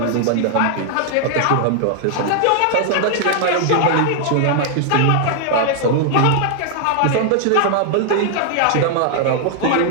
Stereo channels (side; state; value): both; different; correlation 0.00